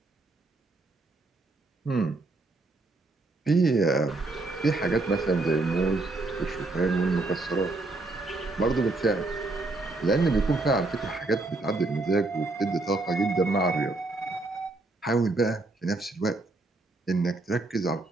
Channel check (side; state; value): left; quieter; 3.1 dB